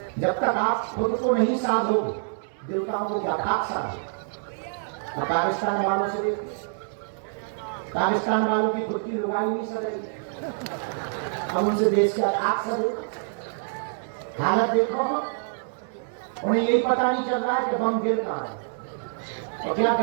जब तक आप खुद को नहीं साधोगे, देवताओं को क्या खाक साधो। अब पाकिस्तान वालों से देखो, पाकिस्तान वालों की खुद की लुगाई नहीं सज रही, अब उनसे देश का खाक सजो। हालत देखो, उन्हें यही पता नहीं चल रहा है कि बम गिर कहां है। और क्या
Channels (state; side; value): silent; left; digital silence